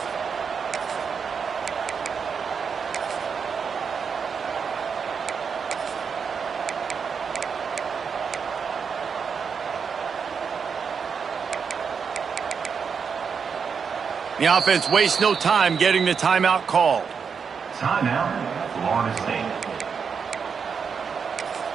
The offense wastes no time getting the timeout called. Timeout, Florida State.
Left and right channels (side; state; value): left; quieter; 6.2 dB